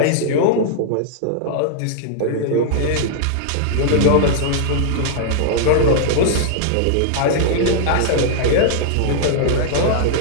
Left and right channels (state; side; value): different; both; correlation -0.01